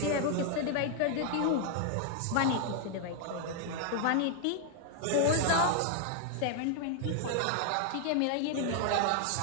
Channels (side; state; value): both; different; correlation 0.00